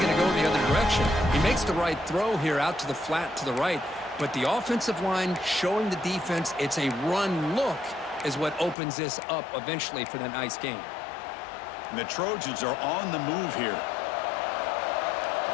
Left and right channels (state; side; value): drops out; right; at 8.8 s